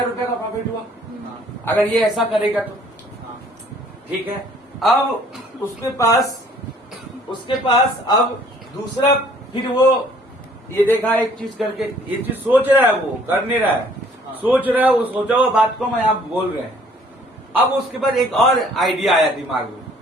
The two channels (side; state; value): both; normal; correlation 0.58